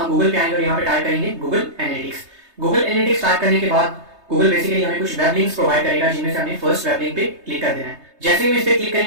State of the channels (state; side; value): late; left; 3.2 ms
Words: गूगल पे आएंगे और यहाँ पे टाइप करेंगे Google analytics. Google analytics type करने के बाद गूगल बेसिकली हमें कुछ वेब लिंक्स प्रोवाइड करेगा, जिनमें से हमें फर्स्ट वेब लिंक पे क्लिक कर देना है। जैसे ही हम इस पे क्लिक